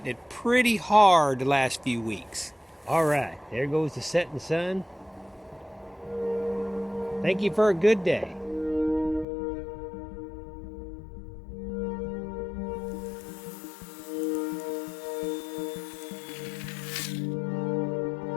it pretty hard the last few weeks. All right, there goes the setting sun. Thank you for a good day.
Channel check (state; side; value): drops out; right; at 9.2 s